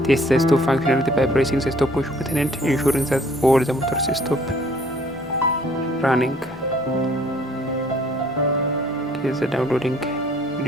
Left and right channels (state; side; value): normal; both; correlation 0.58